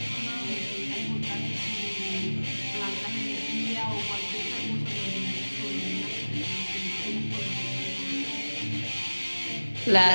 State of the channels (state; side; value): inverted; both; correlation -1.00